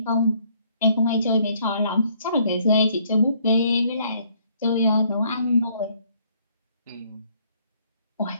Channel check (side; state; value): both; inverted; correlation -0.66